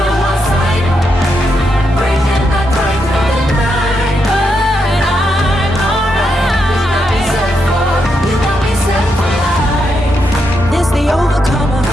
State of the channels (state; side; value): normal; both; correlation 0.82